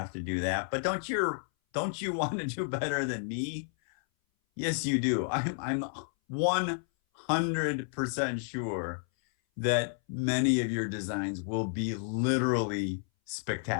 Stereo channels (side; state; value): right; silent; 57 dB below the other